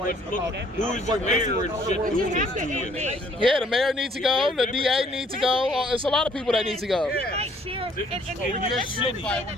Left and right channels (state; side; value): normal; both; correlation 0.62